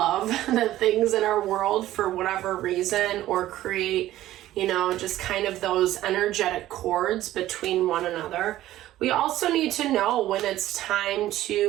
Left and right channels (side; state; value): left; quieter; 14.4 dB